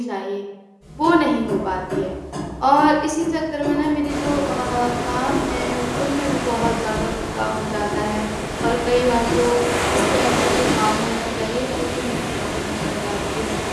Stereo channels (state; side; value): identical; both; correlation 1.00